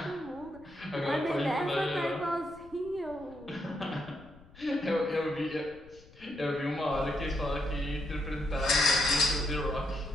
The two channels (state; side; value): noise; left; rumble, 23 dB below the sound